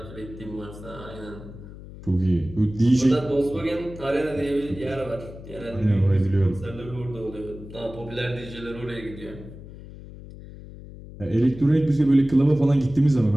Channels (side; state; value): left; noise; hum, 15 dB below the sound